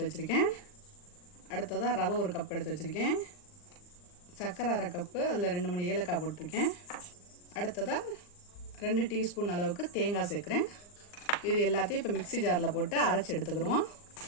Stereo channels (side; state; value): right; late; 39 ms